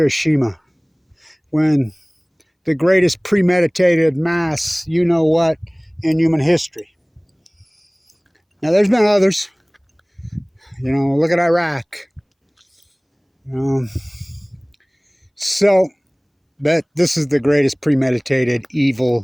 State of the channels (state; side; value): identical; both; correlation 1.00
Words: when the greatest premeditated mass, you know what, in human history. Now there's been others. Look at Iraq. So, but this is the greatest premeditated